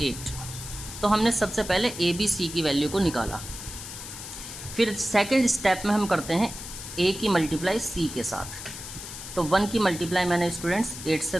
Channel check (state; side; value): noise; left; hiss, 10 dB below the sound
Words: 8। तो हमने सबसे पहले a b c की वैल्यू को निकाला। फिर सेकंड स्टेप में हम करते हैं a की मल्टीप्लाई c के साथ। तो 1 की मल्टीप्लाई मैंने स्टूडेंट्स 8 से